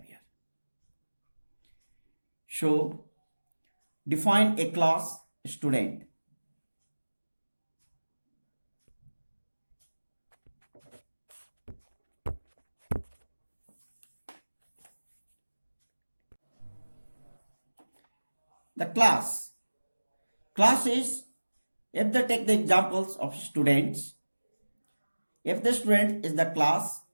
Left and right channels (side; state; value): both; inverted; correlation -1.00